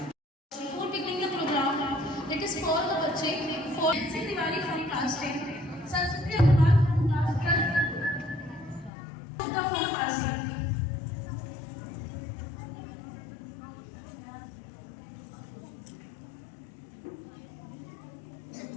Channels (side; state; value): right; drops out; at 8.9 s